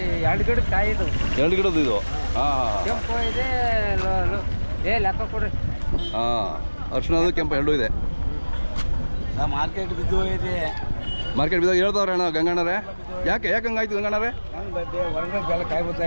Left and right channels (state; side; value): inverted; both; correlation -1.00